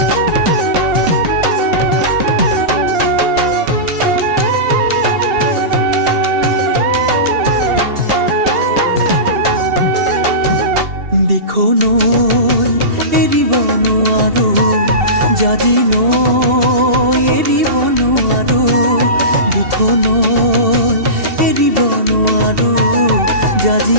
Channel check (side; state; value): left; late; 2.7 ms